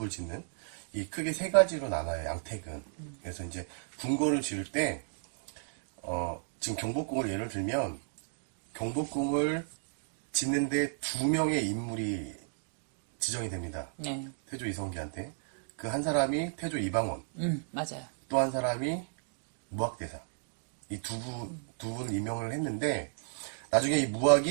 짓는 이 크게 세 가지로 나눠요. 양택은. 그래서 이제 궁궐을 지을 때 지금 경복궁을 예를 들면 경복궁을 짓는데 2명의 인물이 지정이 됩니다. 네. 태조 이성계한테. 그 한 사람이 태조 이방원, 맞아요. 또 한 사람이 무학대사. 이 두 분 임명을 했는데 나중에 이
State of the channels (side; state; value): left; silent; digital silence